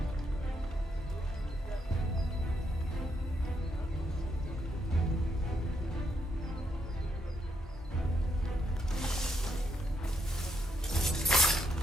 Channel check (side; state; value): both; normal; correlation 0.77